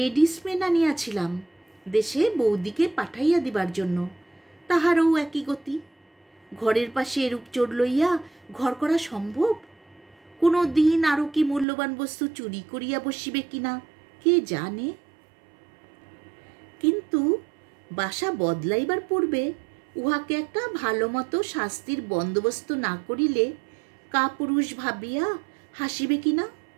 মেন আনিয়াছিলাম দেশে বৌদিকে পাঠাইয়া দিবার জন্য, তাহারও একই গতি। ঘরের পাশে এরূপ চোর লইয়া ঘর করা সম্ভব? কোনো দিন আরও কি মূল্যবান বস্তু চুরি করিয়া বসিবে কিনা কে জানে। কিন্তু বাসা বদলাইবার পূর্বে উহাকে একটা ভালো মতো শাস্তির বন্দোবস্ত না করিলে কাপুরুষ ভাবিয়া হাসিবে কিনা।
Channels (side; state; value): left; drops out; at 11.7 s